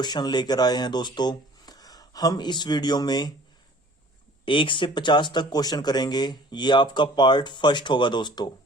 लेकर आए हैं। दोस्तों, हम इस वीडियो में 1 से 50 तक क्वेश्चन करेंगे। ये आपका पार्ट फर्स्ट होगा दोस्तों,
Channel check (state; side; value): normal; both; correlation 0.50